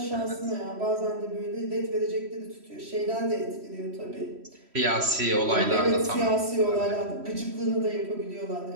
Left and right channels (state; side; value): late; left; 3.1 ms